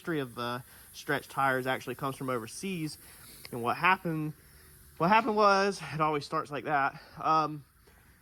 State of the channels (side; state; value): both; identical; correlation 1.00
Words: of stretched tires actually comes from overseas. And what happened was, it always starts like that.